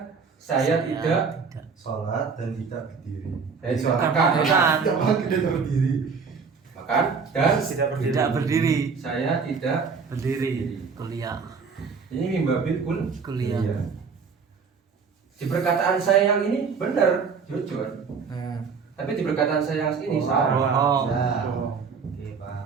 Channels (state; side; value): quieter; left; 5.5 dB